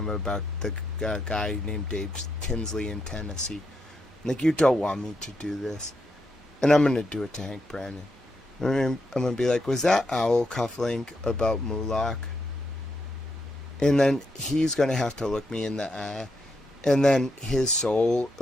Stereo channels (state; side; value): normal; both; correlation 0.81